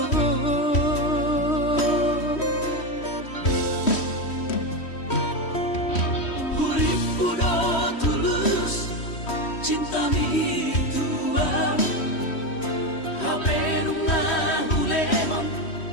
huripku do tulus cinta mi tua hape nunga hulehon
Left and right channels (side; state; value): right; late; 3.1 ms